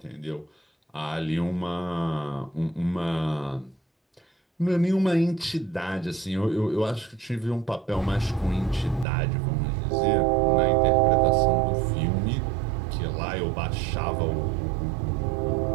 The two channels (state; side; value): drops out; left; at 9.1 s